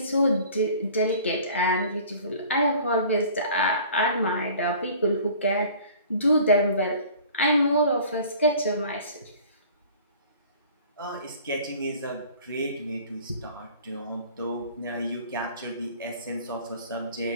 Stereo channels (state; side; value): inverted; both; correlation -0.48